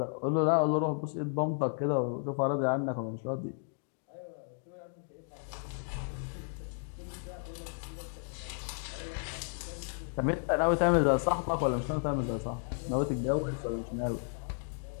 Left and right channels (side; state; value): right; silent; 56 dB below the other